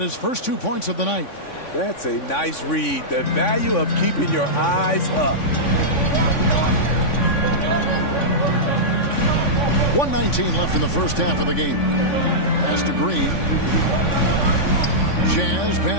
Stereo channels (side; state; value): right; late; 3.5 ms